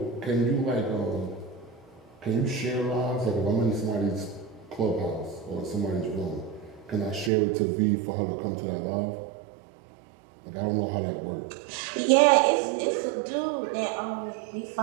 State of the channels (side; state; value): left; drops out; at 7.3 s